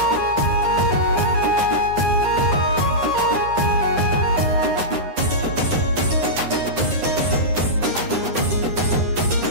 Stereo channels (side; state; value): left; late; 9.7 ms